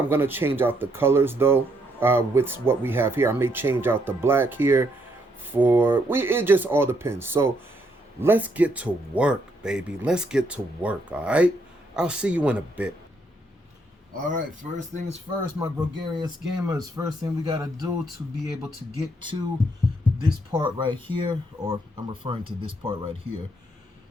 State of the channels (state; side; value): normal; both; correlation 0.73